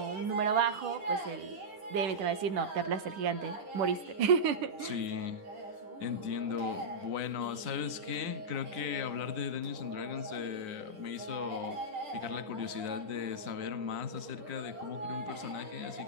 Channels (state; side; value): late; left; 9.9 ms